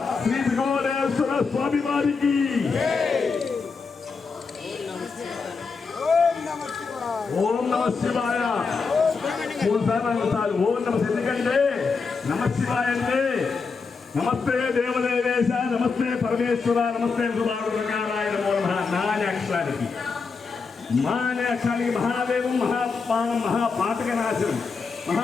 శ్రీ త్రికోణేశ్వర స్వామి వారికి ఓం నమ శివాయ. మూడుసార్లు ఓం నమ. ఎందుకంటే నమ శివాయ అంటే నమస్తే దేవదేవేశ, నమస్తే పరమేశ్వర, నమస్తే సుధారుణకారాయ నమో నమః. నాని అక్షరానికి మానే అక్షరానికి మహాదేవం మహాపానం మహాపాతకనాశనం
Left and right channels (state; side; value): quieter; right; 4.9 dB